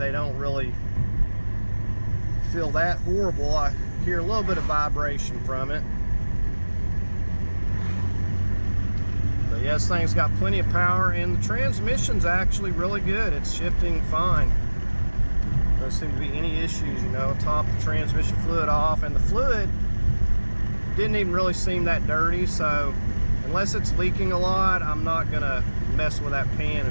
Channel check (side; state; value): both; inverted; correlation -1.00